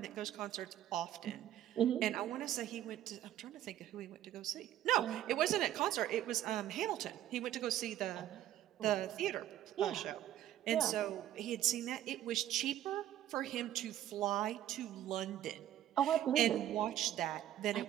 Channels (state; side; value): quieter; left; 12.2 dB